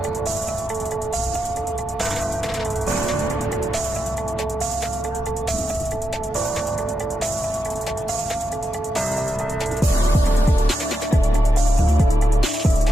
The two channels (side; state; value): both; normal; correlation 0.85